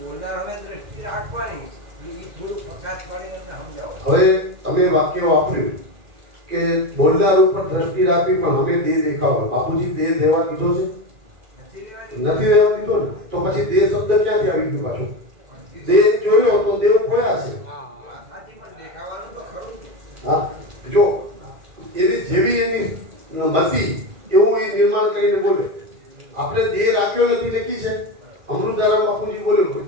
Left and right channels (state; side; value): late; left; 2.4 ms